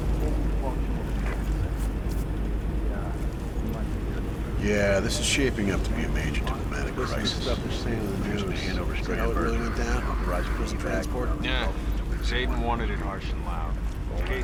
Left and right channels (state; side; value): identical; both; correlation 1.00